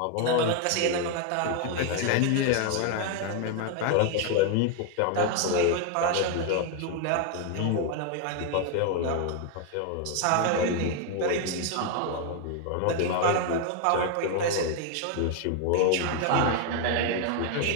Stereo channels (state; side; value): different; both; correlation 0.01